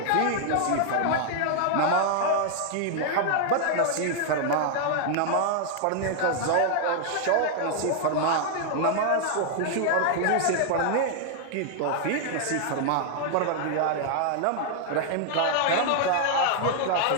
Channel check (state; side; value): different; both; correlation -0.01